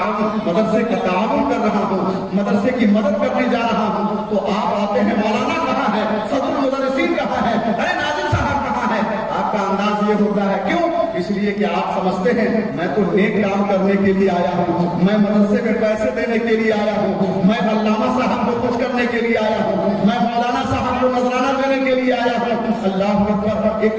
کر رہا ہوں، مدرسے کی مدد کرنے جا رہا ہوں، تو آپ آتے ہیں مولانا کہاں ہے، صدر المدرسین کہاں ہے، ارے ناظم صاحب کہاں ہے؟ آپ کا انداز یہ ہوتا ہے، کیوں؟ اس لیے کہ آپ سمجھتے ہیں میں تو نیک کام کرنے کے لیے آیا ہوں، میں مدرسے میں پیسے دینے کے لیے آیا ہوں، میں علامہ صاحب کو خوش کرنے کے لیے آیا ہوں، میں مولانا صاحب کو نذرانہ دینے کے لیے آیا ہوں۔ اللہ اکبر،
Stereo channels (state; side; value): identical; both; correlation 1.00